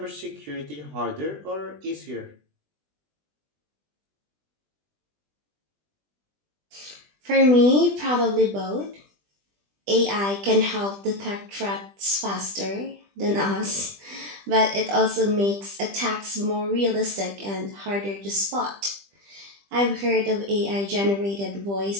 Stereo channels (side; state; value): left; late; 20 ms